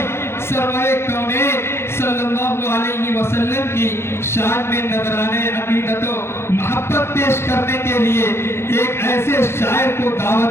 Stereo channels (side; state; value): right; late; 0.12 ms